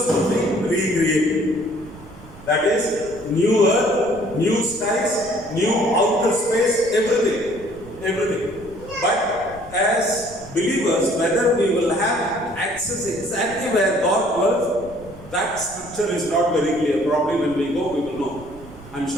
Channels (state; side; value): noise; right; rumble, 19 dB below the sound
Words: will be recreated. That is, new earth, new skies, new outer space, everything. Everything. But as believers, whether we will have access exactly where God dwells, that scripture is not very clear. Probably when we go, we will know. I'm